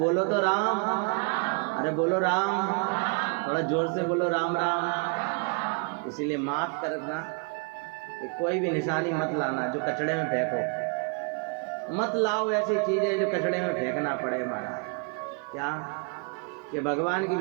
तो राम, अरे बोलो राम, थोड़ा जोर से बोलो राम राम। इसीलिए माफ करना कि कोई भी निशानी मत लाना जो कचड़े में फेंको, मत लाओ ऐसी चीजें जो कचड़े में फेंकना पड़े हमारा। क्या कि भगवान की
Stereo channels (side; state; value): left; quieter; 33.7 dB